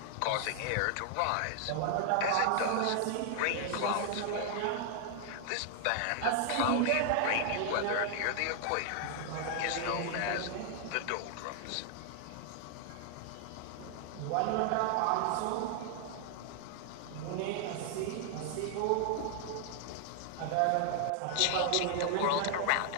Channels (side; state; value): both; different; correlation 0.00